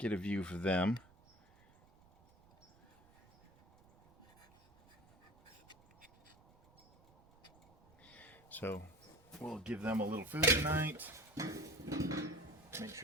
a view for them. So we'll give them a little food tonight. Make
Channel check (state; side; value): noise; right; rumble, 28 dB below the sound